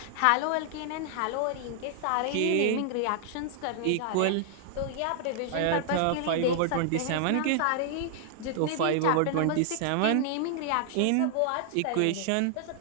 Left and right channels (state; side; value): different; both; correlation 0.00